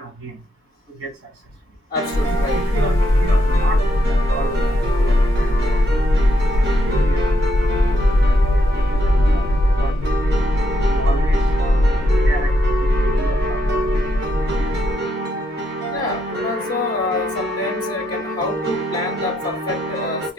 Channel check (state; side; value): normal; both; correlation 0.78